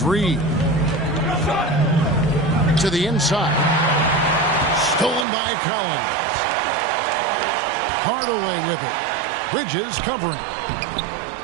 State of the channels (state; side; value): drops out; left; at 5.2 s